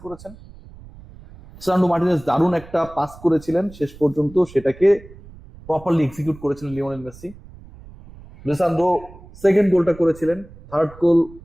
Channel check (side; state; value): right; noise; rumble, 20 dB below the sound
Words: করেছেন। সান্ডো মার্টিনেজ দারুণ একটা পাস করেছিলেন, শেষ পর্যন্ত সেটাকে প্রপারলি এক্সিকিউট করেছিলেন লিওনেল মেসি। লিসান্দ্রো সেকেন্ড গোলটা করেছিলেন, থার্ড গোল